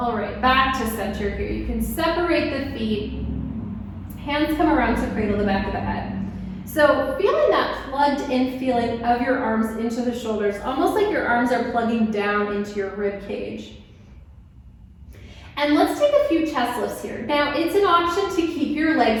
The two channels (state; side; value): identical; both; correlation 1.00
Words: right, back to center here. You can separate the feet. Hands come around to cradle the back of the head. So feeling that plugged in feeling of your arms into the shoulders, almost like your arms are plugging down into your rib cage. And let's take a few chest lifts here. Now, it's an option to keep your